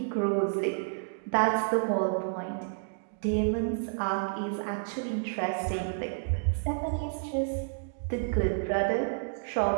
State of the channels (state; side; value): silent; left; digital silence